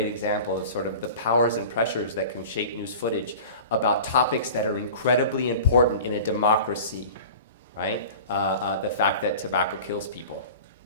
example of sort of the powers and pressures that can shape news footage about topics that are incredibly important in a democracy, right? The fact that tobacco kills people.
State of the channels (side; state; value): both; inverted; correlation -0.38